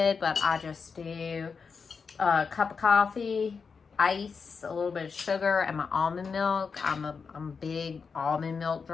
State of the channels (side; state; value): right; quieter; 5.4 dB